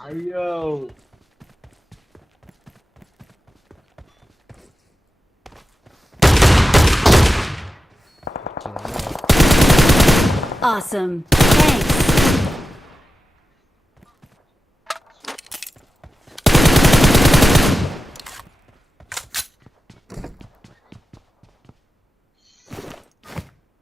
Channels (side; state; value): both; normal; correlation 0.92